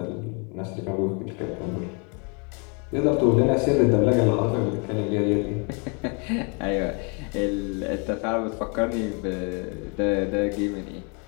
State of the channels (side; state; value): right; quieter; 35.4 dB